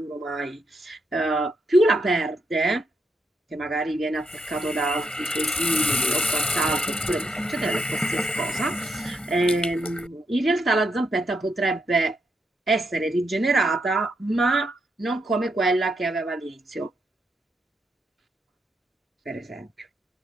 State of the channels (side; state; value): both; normal; correlation 0.80